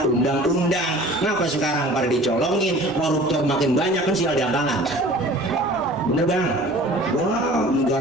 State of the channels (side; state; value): both; normal; correlation 0.45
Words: undang-undang. Ngapa sekarang pada dicolongin, koruptor makin banyak, kan sial diangkalan. Bener Bang? Wah,